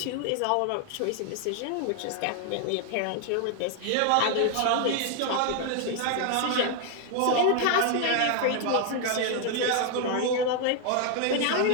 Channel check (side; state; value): both; different; correlation 0.00